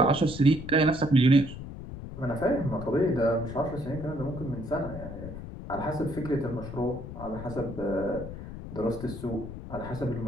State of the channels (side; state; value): left; noise; rumble, 10 dB below the sound